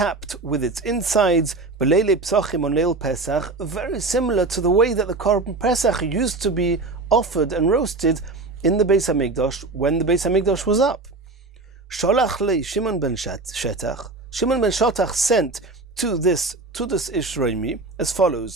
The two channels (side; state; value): left; quieter; 3.5 dB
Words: with its insides, b'leilei psachim on Leil Pesach, very similar to the way that the Korban Pesach used to be offered and roasted in the Beis Hamikdash when the Beis Hamikdash was up. Sholach lei Shimon ben Shetach. Shimon ben Shetach sent to this Tudus Ishroimi as